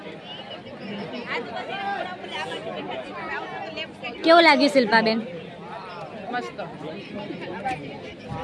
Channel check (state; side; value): identical; both; correlation 1.00